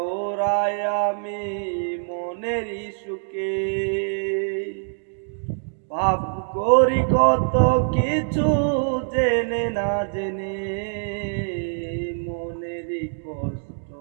ওরাই আমি মনেরই সুখে। পাপ করি কত কিছু জেনে না জেনে, মনেরই কষ্ট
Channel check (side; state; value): left; silent; digital silence